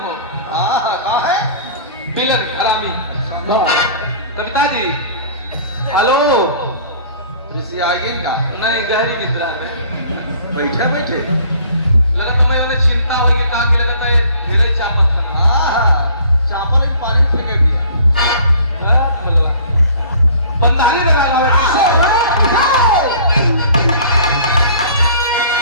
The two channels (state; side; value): inverted; both; correlation -0.50